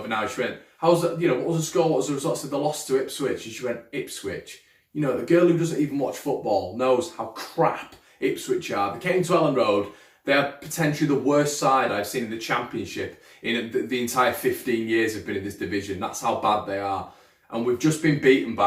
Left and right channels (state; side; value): identical; both; correlation 1.00